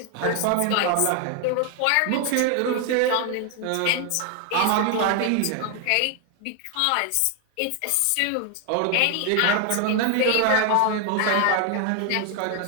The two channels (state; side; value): different; both; correlation 0.01